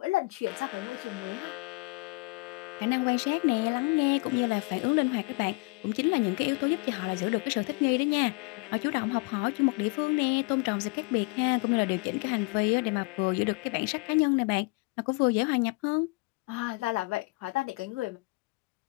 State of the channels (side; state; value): right; quieter; 27.9 dB